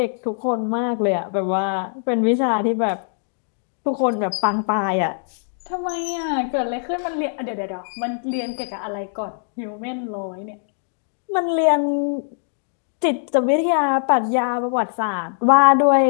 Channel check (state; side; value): silent; right; digital silence